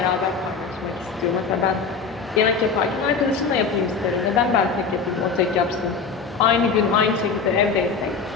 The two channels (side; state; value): right; quieter; 5.2 dB